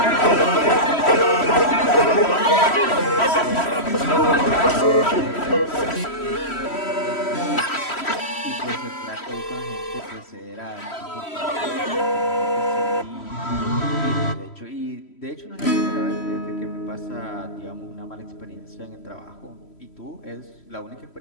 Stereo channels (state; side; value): late; right; 3.1 ms